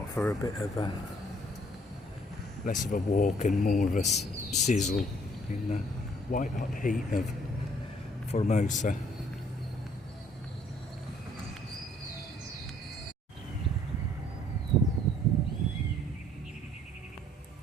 for a bit of a less of a walk and more of a sizzle in the white hot heat of Formosa.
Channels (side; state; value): both; normal; correlation 0.62